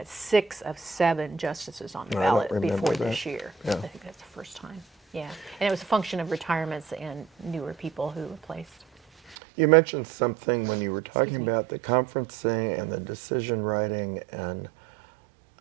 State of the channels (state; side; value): drops out; left; at 9.3 s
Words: 6 of 7 justices on the ballot before this year. Yeah. I think that's the first time. Yeah, and it was a function of retirements and newer people who replaced. You mentioned something when you were talking about the conferencing and the decision writing, and